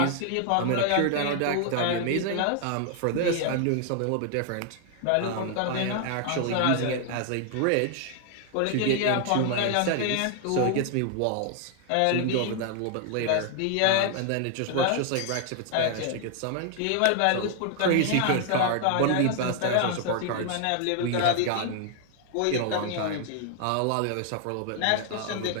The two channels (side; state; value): both; different; correlation 0.00